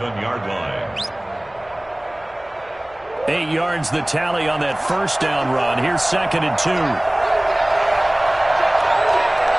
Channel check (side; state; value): left; noise; hum, 28 dB below the sound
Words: line. 8 yards the tally on that first down run. Here's 2nd and 2.